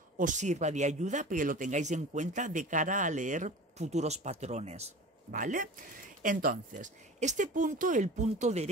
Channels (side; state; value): both; normal; correlation 0.37